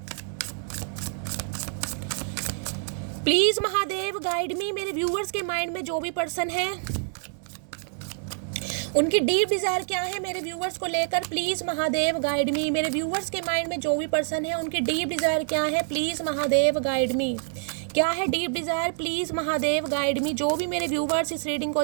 प्लीज महादेव गाइड मी। मेरे व्यूवर्स के माइंड में जो भी पर्सन है उनकी डीप डिजायर क्या है मेरे व्यूवर्स को लेकर, प्लीज महादेव गाइड मी। मेरे व्यूवर्स के माइंड में जो भी पर्सन है उनकी डीप डिजायर क्या है, प्लीज महादेव गाइड मी। क्या है deep Dzire, please Mahadev guide मी। जो भी मेरे व्यूवर्स इस रीडिंग को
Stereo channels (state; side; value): silent; left; digital silence